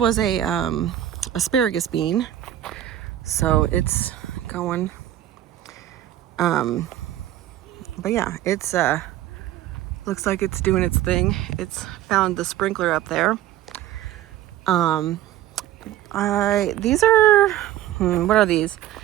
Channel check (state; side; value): quieter; left; 12.6 dB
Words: a asparagus bean, so it's going. But yeah, it's looks like it's doing its thing. It's found the sprinkler up there. These are, what are these?